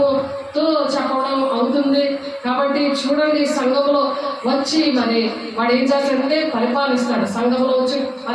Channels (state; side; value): identical; both; correlation 1.00